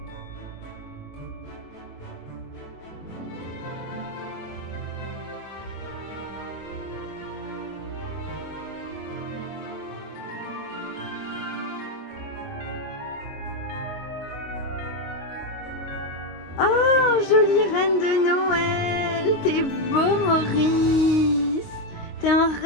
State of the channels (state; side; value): late; right; 22 ms